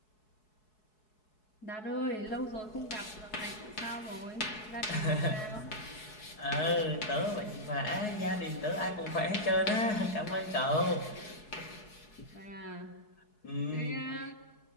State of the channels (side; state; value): right; late; 4.7 ms